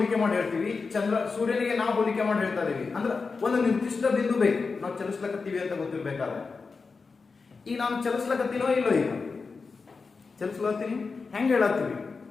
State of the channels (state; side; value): quieter; right; 4.6 dB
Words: ಮಾಡಿ ಹೇಳ್ತೀವಿ, ಸೂರ್ಯನಿಗೆ ನಾವು ಹೋಲಿಕೆ ಮಾಡಿ ಹೇಳ್ತಾ ಇದೀವಿ. ಅಂದ್ರೆ ಒಂದು ನಿರ್ದಿಷ್ಟ ಬಿಂದು ಬೇಕು ನಾವು ಚಲಿಸ್ಲಕತ್ತೀವಿ ಅಂತ ಗೊತ್ತಿರ್ಬೇಕಾದ್ರೆ. ಈಗ ನಾನು ಚಲಿಸ್ಲಕತ್ತೀನೋ ಇಲ್ಲೋ, ಈಗ ಚಲಿಸ್ಲತ್ತೀನಿ ಹೆಂಗ್ ಹೇಳತ್ತೀವಿ,